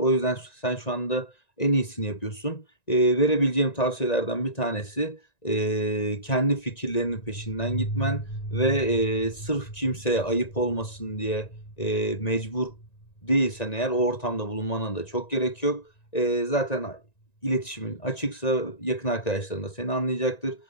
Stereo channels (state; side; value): late; right; 1.9 ms